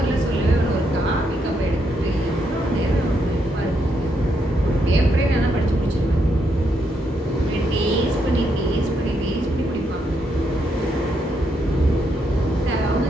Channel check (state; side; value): normal; both; correlation 0.78